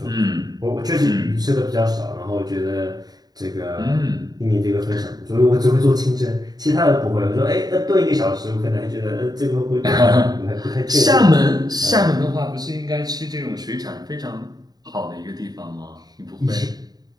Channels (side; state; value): left; late; 0.19 ms